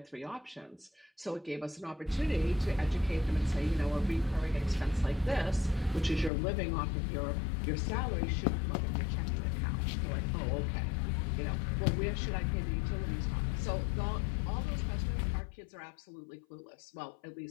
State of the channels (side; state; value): right; drops out; at 6.3 s